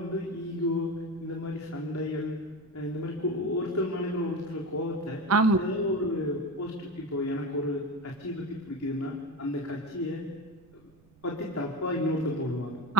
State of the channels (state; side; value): noise; right; rumble, 28 dB below the sound